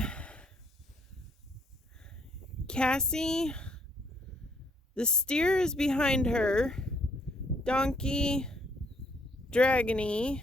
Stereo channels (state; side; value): normal; both; correlation 0.68